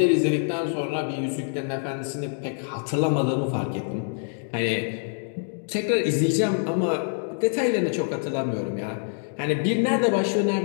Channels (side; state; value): right; silent; digital silence